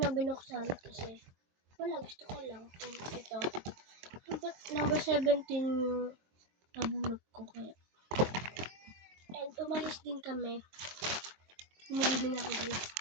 binuksan kasi wala, gusto ko lang. Ito. Number 17 yung nabunot ko kaya. And umalis din kami. Umili din ako guys.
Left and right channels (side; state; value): left; late; 23 ms